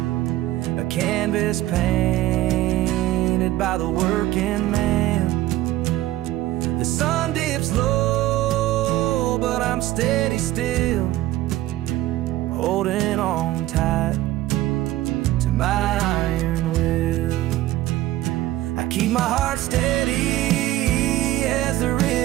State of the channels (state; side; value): quieter; left; 15.5 dB